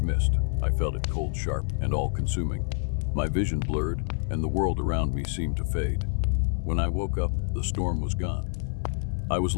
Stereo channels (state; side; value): silent; right; 58 dB below the other